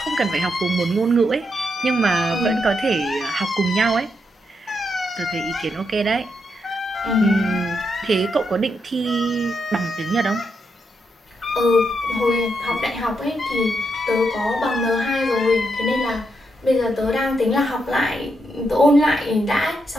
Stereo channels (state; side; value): normal; both; correlation 0.81